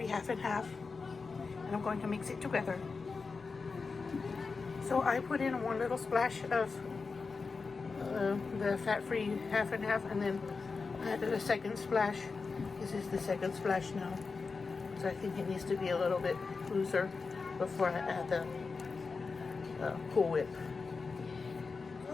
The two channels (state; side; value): quieter; right; 4.5 dB